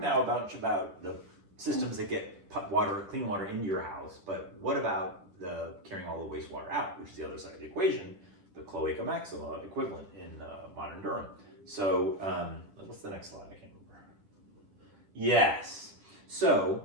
about the systems that get clean water into your house, but what about the carrying all the wastewater out, which is the other side of the equation, the cloaca maxima equivalent in modern Durham. So what's the next slide? I can't Yes. So,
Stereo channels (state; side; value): late; left; 10 ms